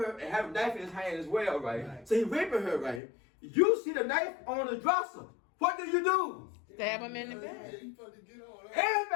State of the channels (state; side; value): drops out; right; at 3.0 s